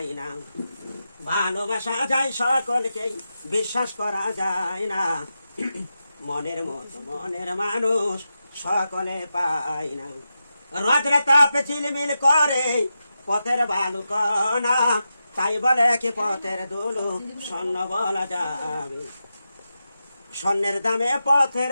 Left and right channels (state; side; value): inverted; both; correlation -0.89